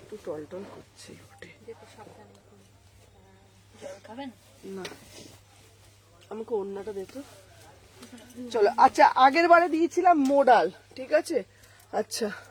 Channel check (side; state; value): both; identical; correlation 1.00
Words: টলটল করছে, না আমাকে অন্যটা দেখো। চলো আচ্ছা আগের বারে দিয়েছিলাম মোডাল, ঠিক আছে। আচ্ছা